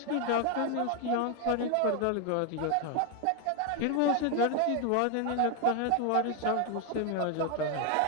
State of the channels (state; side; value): different; both; correlation 0.01